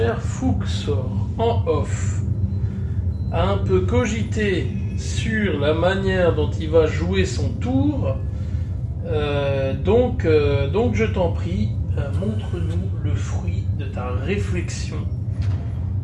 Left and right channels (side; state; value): both; identical; correlation 1.00